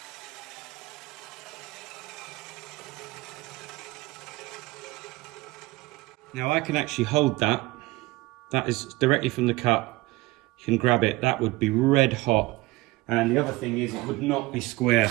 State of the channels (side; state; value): left; quieter; 20.6 dB